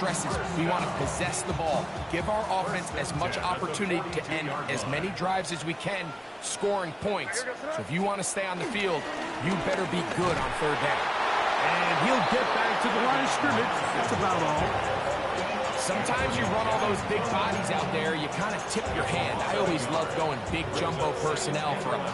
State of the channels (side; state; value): both; identical; correlation 1.00